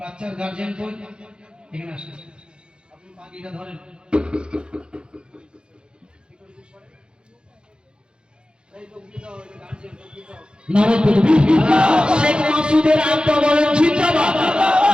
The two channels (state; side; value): late; left; 0.051 ms